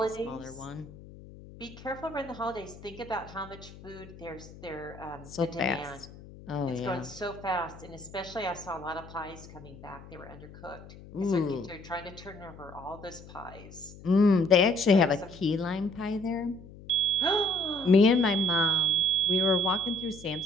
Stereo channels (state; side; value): noise; left; hum, 18 dB below the sound